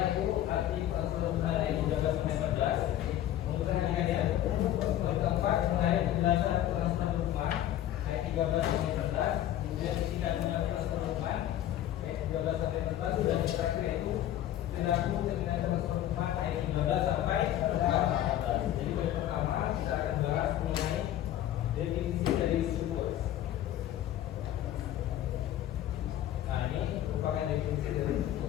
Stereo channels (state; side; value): quieter; right; 12.3 dB